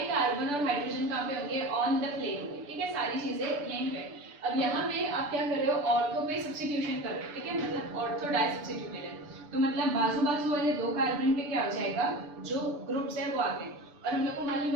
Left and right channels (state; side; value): late; left; 6.9 ms